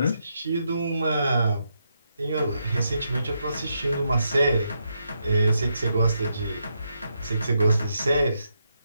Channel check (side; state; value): both; inverted; correlation -0.81